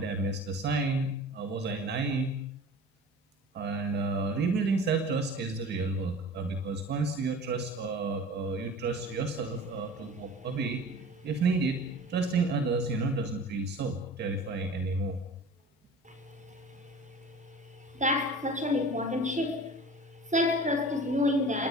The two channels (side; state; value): both; normal; correlation 0.39